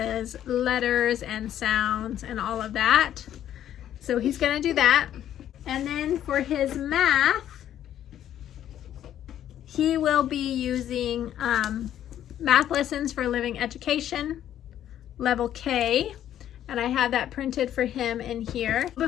letters and sounds and all of that. So he's gonna do that. And then for his math, he will be using Math Lessons for Living Education, Level K, and I have that printed for him in here.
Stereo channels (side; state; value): right; quieter; 11.1 dB